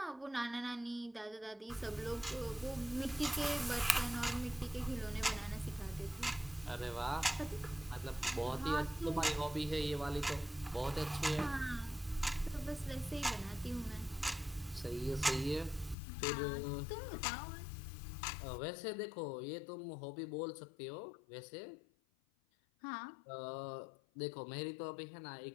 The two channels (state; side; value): drops out; right; at 16.0 s